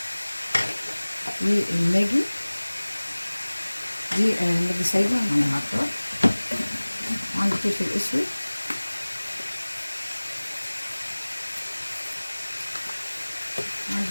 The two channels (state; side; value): inverted; both; correlation -1.00